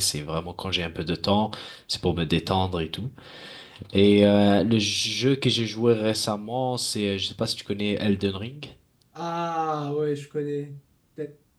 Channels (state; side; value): identical; both; correlation 1.00